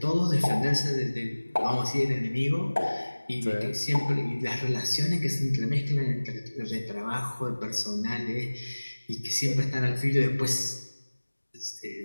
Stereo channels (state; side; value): inverted; both; correlation -1.00